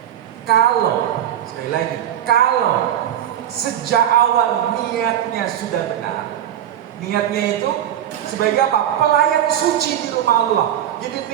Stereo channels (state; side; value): quieter; left; 10.9 dB